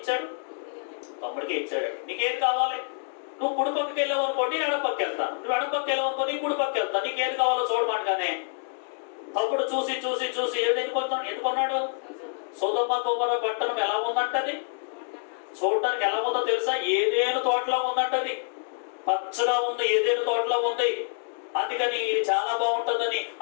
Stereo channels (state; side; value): silent; right; digital silence